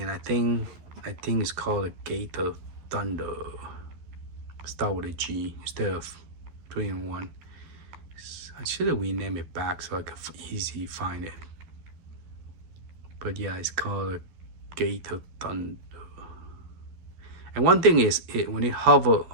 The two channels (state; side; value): late; left; 12 ms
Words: I think it's called a Gate of Thunder. Start with a G instead of 3-in-1. I should have renamed it back so I could easily find it. But yeah, it's called a Gate of Thunder. And one thing is, when it